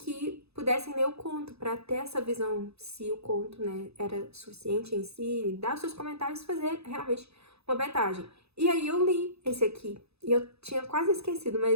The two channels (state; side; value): late; left; 0.79 ms